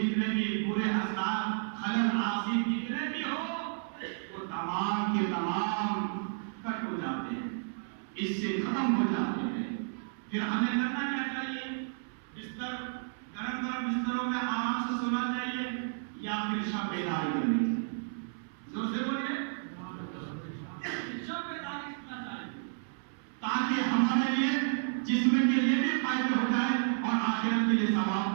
بھی برے اثرات، خلل آسیب جتنے بھی ہو، وہ تمام کے تمام کٹ ہو جاتے ہیں، اس سے ختم ہو جاتے ہیں۔ پھر ہمیں کرنا کیا چاہیے؟ بستر گرم گرم بستروں میں آرام سے سونا چاہیے یا پھر شب بیداری کرنی چاہیے؟ زور سے بولیے، شب بیداری کرنا چاہیے تاکہ ہمارے لیے جسم کے لیے بھی فائدے ہو جائے اور آخرت کے لیے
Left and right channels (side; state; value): left; silent; 56 dB below the other